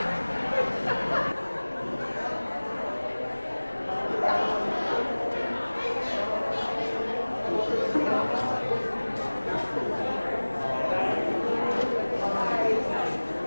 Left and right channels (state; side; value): inverted; both; correlation -1.00